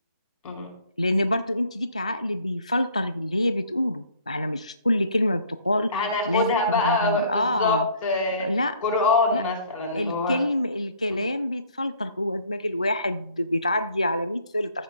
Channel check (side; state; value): both; inverted; correlation -0.57